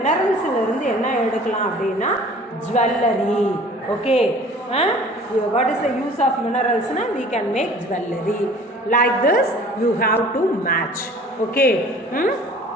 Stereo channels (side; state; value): both; normal; correlation 0.48